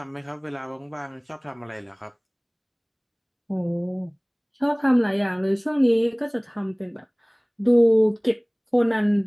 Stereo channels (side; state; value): both; identical; correlation 1.00